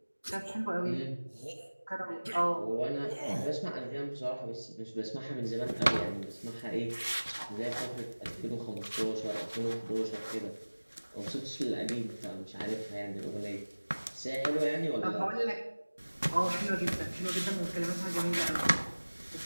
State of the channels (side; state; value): both; inverted; correlation -1.00